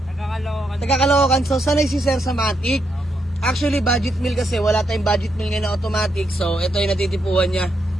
Taga-Caloocan. So sanay si Sir sa Matic. Actually, budget meal kasi wala tayong budget meal ngayon na automatic. So ito yung natitipuan niya.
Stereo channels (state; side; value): normal; both; correlation 0.80